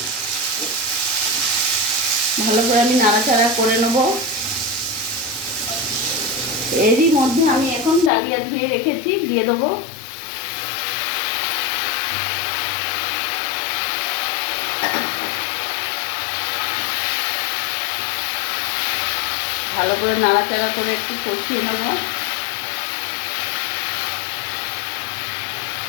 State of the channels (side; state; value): right; drops out; at 8.1 s